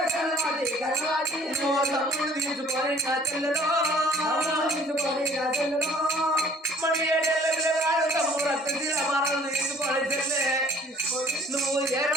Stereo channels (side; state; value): both; normal; correlation 0.55